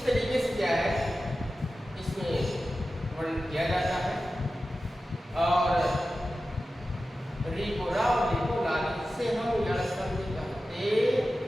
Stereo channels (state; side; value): normal; both; correlation 0.94